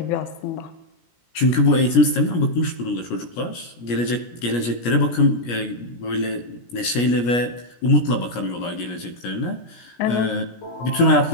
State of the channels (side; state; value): right; late; 17 ms